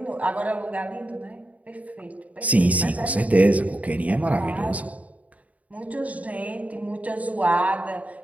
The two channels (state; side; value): late; left; 0.070 ms